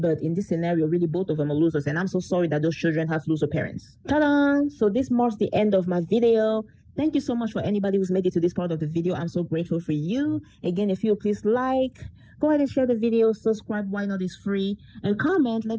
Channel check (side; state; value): both; identical; correlation 1.00